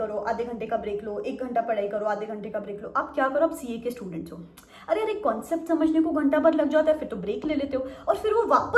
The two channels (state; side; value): identical; both; correlation 1.00